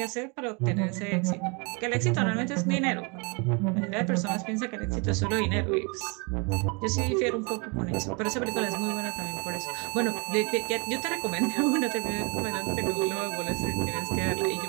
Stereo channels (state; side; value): quieter; left; 31.7 dB